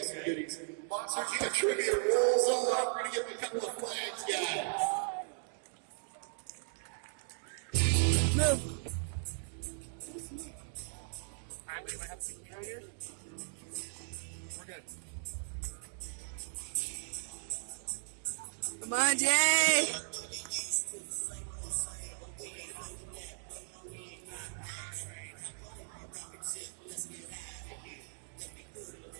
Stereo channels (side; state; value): left; silent; digital silence